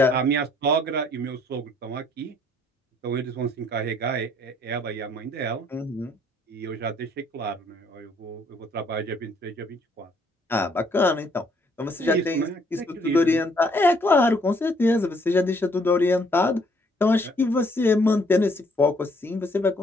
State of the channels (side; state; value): both; normal; correlation 0.65